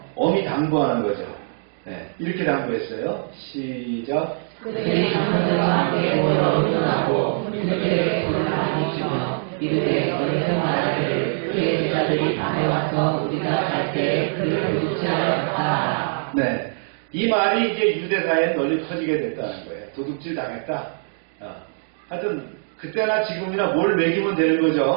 엄히 당부하는 거죠. 네, 이렇게 당부했어요. 시작. 그들이 장로들과 함께 모여 의논하고 그들에게 돈을 많이 주며 이르되 너희는 말하기를 그의 제자들이 밤에 와서 우리가 갈 때 그를 도둑질하였다. 네, 이 말이 이제 유대사에 널리 퍼지게 됐다는 거예요. 도둑질 당했다. 하여튼 그때나 지금이나 뭘 매기면 되는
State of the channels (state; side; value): silent; left; digital silence